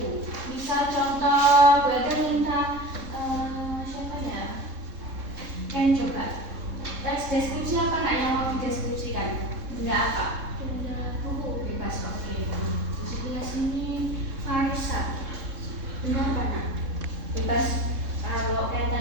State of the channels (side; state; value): left; late; 3.7 ms